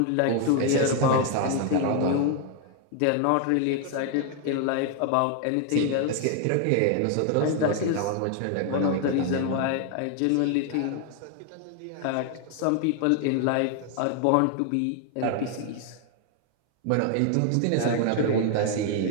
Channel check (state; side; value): different; both; correlation 0.00